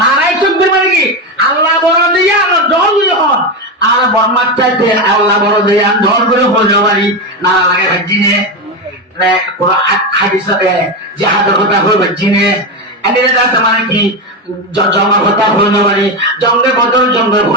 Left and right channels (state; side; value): normal; both; correlation 0.14